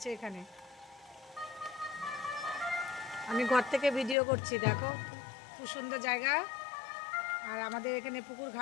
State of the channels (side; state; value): right; drops out; at 4.2 s